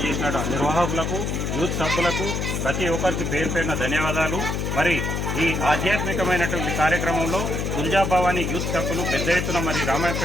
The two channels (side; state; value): left; noise; hum, 1 dB below the sound